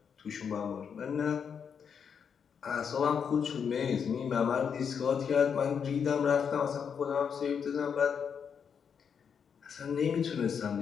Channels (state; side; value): quieter; right; 7.0 dB